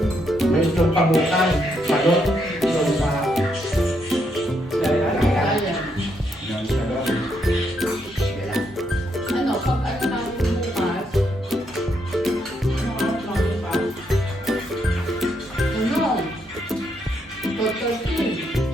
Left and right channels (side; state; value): both; normal; correlation 0.77